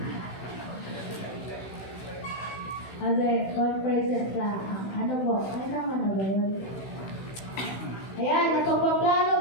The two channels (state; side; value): late; right; 16 ms